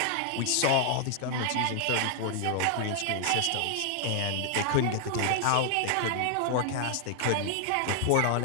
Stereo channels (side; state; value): both; different; correlation 0.00